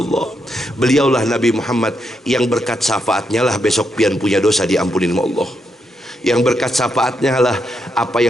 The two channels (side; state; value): both; normal; correlation 0.81